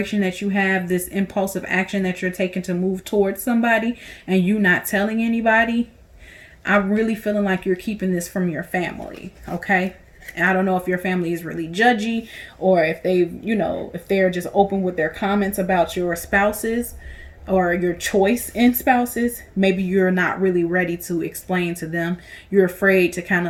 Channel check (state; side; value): identical; both; correlation 1.00